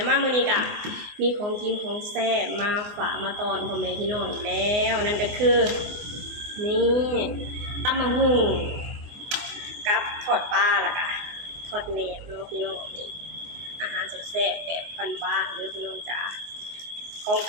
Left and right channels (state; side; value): late; left; 24 ms